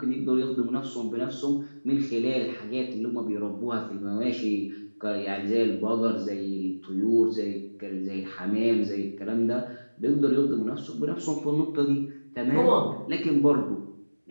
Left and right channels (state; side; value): inverted; both; correlation -1.00